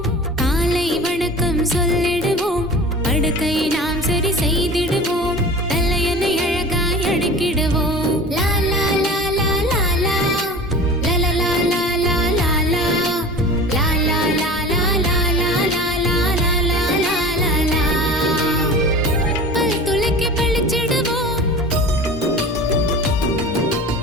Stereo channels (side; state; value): both; normal; correlation 0.37